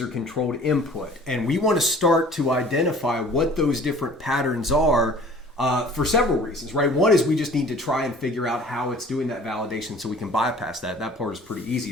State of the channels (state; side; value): normal; both; correlation 0.48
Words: input. And we want to start to identify what those different patterns are for several reasons, right? One is we just need to try and figure out how it's doing that validation so we can bypass that. That part is pretty easy.